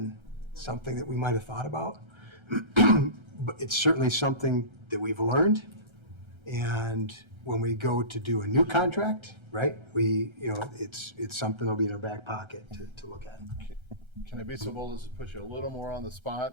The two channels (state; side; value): late; left; 1.3 ms